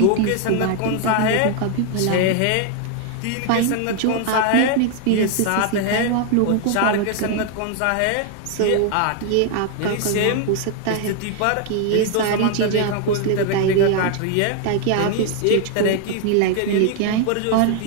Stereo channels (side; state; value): both; different; correlation 0.00